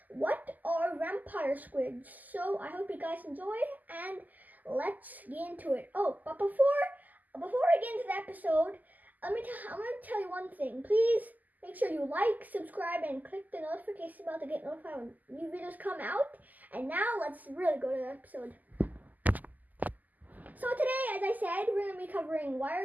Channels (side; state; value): left; late; 0.082 ms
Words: what are vampire squids. So I hope you guys enjoy, and let's get into it. Oh, but before I get into the episode, I'm going to tell you one thing. Please make sure you like, subscribe, and click the notification bell to get notified when new videos come out. And now let's really go to the episode. So today, as I said, we're going to be covering why